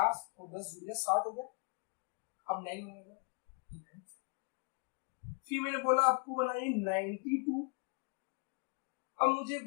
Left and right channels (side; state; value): right; quieter; 35.7 dB